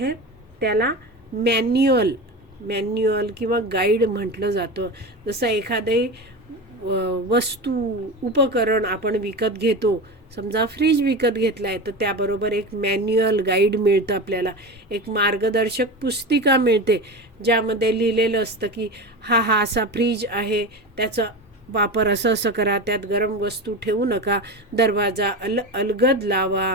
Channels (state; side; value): normal; both; correlation 0.25